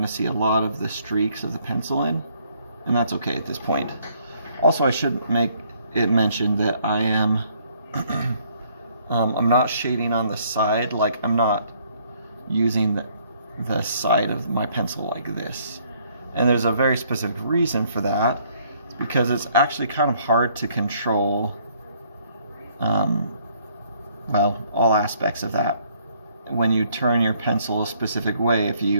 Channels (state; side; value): inverted; both; correlation -0.65